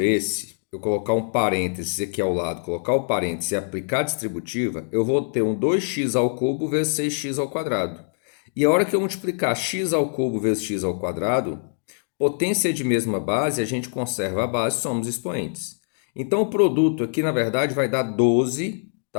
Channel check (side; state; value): right; silent; digital silence